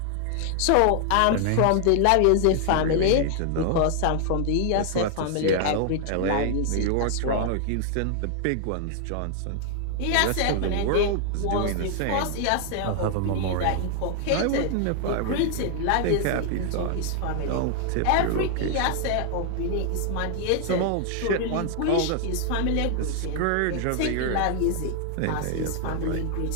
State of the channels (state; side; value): different; both; correlation 0.00